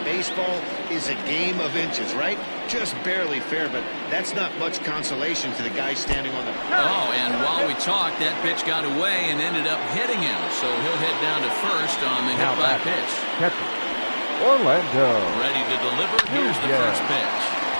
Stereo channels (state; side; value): inverted; both; correlation -1.00